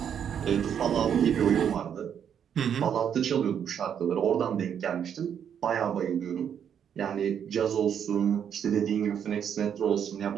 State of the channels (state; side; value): quieter; left; 8.5 dB